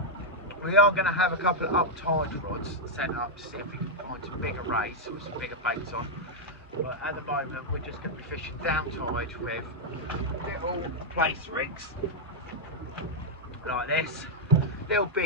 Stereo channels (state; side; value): normal; both; correlation -0.02